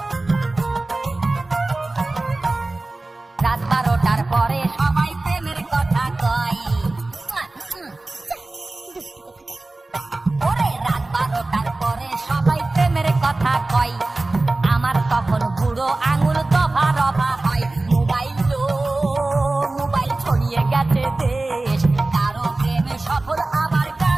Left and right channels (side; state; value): left; quieter; 3.1 dB